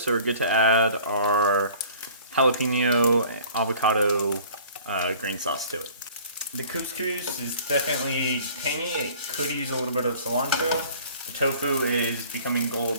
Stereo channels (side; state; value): both; inverted; correlation -0.50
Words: we're good to add our jalapeno avocado green sauce to it. The couscous is definitely tangy. It could use a little bit of cilantro. The tofu is becoming gold